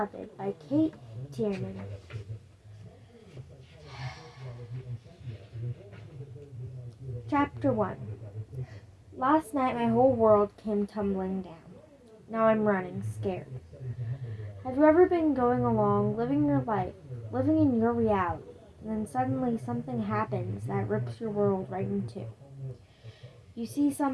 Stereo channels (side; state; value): both; identical; correlation 1.00